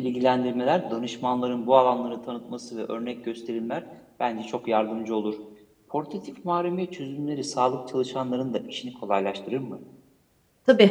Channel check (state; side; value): identical; both; correlation 1.00